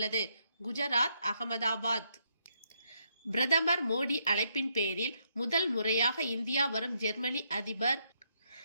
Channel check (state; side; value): inverted; both; correlation -0.75